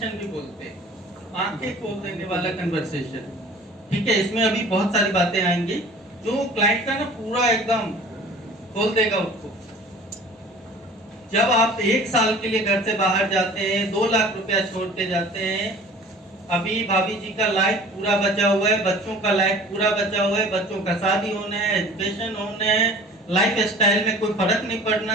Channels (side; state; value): both; normal; correlation 0.45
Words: भी बोलते हैं, आंखें खोल देने वाला कन्वर्सेशन। ठीक है, इसमें अभी बहुत सारी बातें आएंगी जो क्लाइंट का ना पूरा एकदम खोल देगा उसको। जब आप 1 साल के लिए घर से बाहर जाते हैं, 2 लाख रुपया छोड़ के जाते हैं, अभी भाभी जी का लाइफ पूरा बचा हुआ है, बच्चों का लाइफ पूरा बचा हुआ है, बच्चों का शादी होना है, एजुकेशन होना है, लाइफ स्टाइल में कोई फर्क नहीं